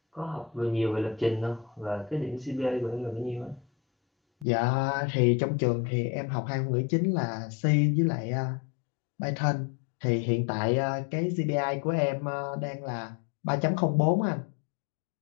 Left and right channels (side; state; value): right; drops out; at 4.5 s